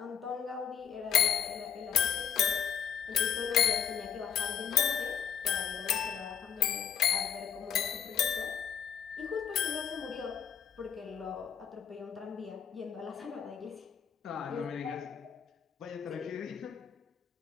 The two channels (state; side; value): quieter; right; 8.4 dB